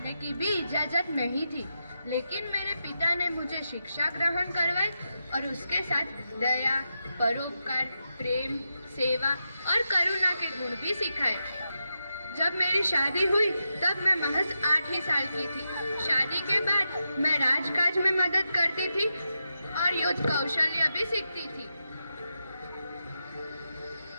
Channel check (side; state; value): both; inverted; correlation -0.87